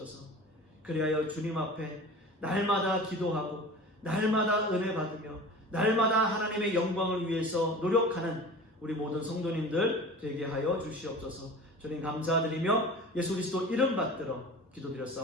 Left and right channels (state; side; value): normal; both; correlation 0.38